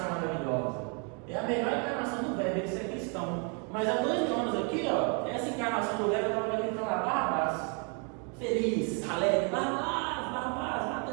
maravilhosa. É a melhor encarnação do Weber, de ser cristão. Mas há 2 anos aqui, ó, essa encarnação do Weber estava gritando lá, Barrabás, feliz, alegre, Barrabás, Barrabás,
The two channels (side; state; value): left; quieter; 36.9 dB